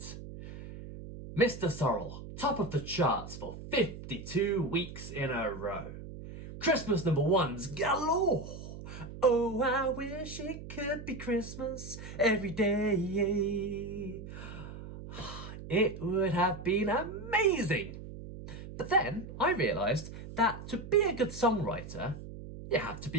Mr. Sorrel, top of the charts for 52 weeks in a row. Christmas #1s galore. Oh, I wish it could be Christmas every day. It would have been amazing. But then I realised that to be a good songwriter, you have to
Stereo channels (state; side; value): noise; right; hum, 12 dB below the sound